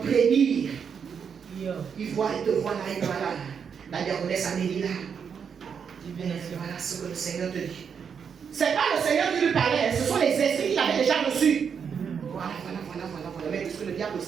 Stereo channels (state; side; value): quieter; left; 6.9 dB